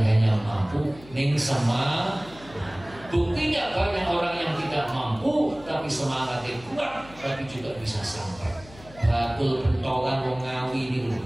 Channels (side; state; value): left; noise; hum, 20 dB below the sound